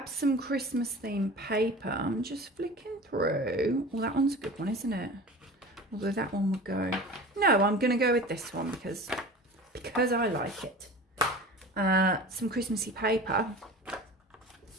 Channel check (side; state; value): both; normal; correlation 0.37